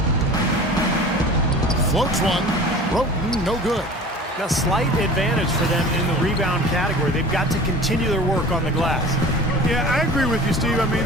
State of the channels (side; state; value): both; normal; correlation 0.40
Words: Floats one. Roten, no good. A slight advantage for them in the rebound category. They've got to continue their work on the glass. Yeah, I agree with you, Steve. I